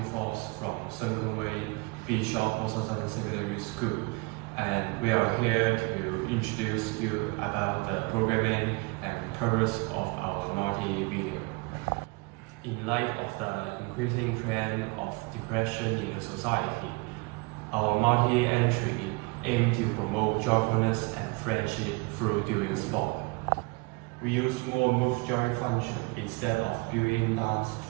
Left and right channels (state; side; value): quieter; left; 28.1 dB